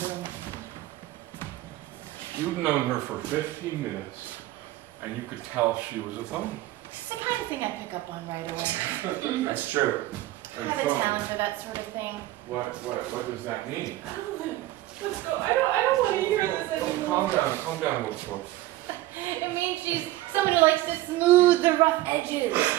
You've known her for 15 minutes, and you could tell she was a phony. It's the kind of thing I pick up on right away. That's true. I have a talent for that sort of thing. What does that mean? Let's go. I don't want to hear this anymore. Calm down, Wolf. It means she's someone who likes to smooth the rough edges,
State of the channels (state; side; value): quieter; left; 16.4 dB